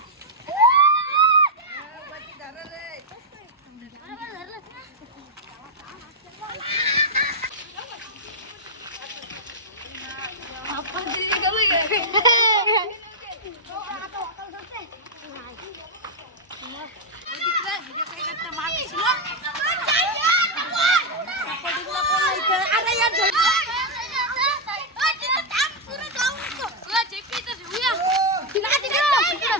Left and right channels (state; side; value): normal; both; correlation -0.01